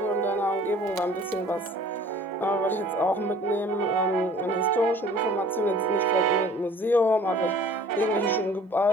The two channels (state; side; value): normal; both; correlation 0.50